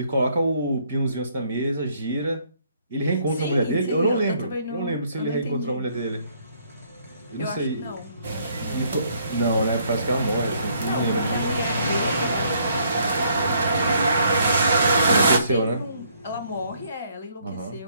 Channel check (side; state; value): both; inverted; correlation -0.67